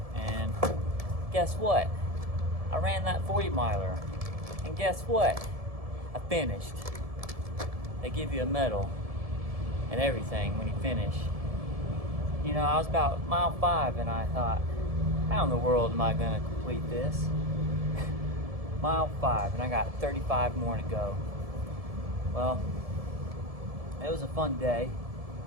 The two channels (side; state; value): left; late; 1.7 ms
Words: and guess what? I ran that 40 miler, and guess what? I finished. They give you a medal and everything when you finish. You know, I was about mile 5, and I thought, how in the world am I gonna complete this? Mile 5, and I got 35 more to go. Well, it was a fun day.